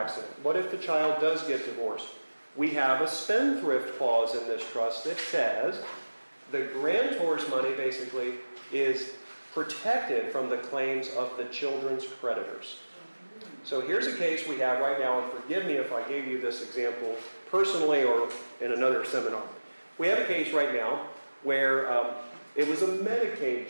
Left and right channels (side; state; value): both; inverted; correlation -1.00